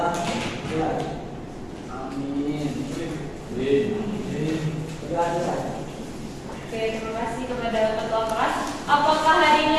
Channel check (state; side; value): identical; both; correlation 1.00